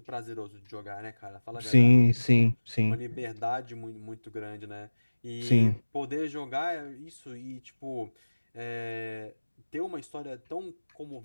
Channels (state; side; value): inverted; both; correlation -1.00